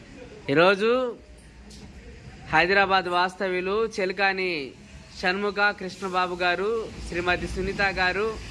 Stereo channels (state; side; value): identical; both; correlation 1.00